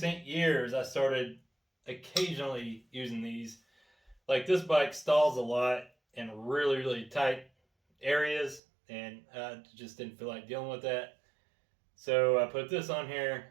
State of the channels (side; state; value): left; drops out; at 8.6 s